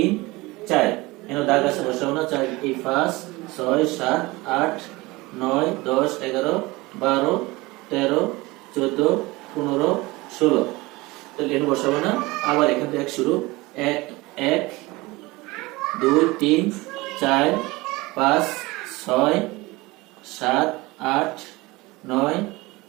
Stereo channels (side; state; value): left; quieter; 22.0 dB